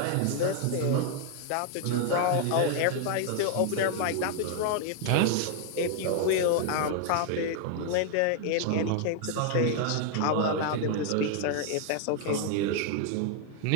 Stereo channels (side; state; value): both; different; correlation 0.00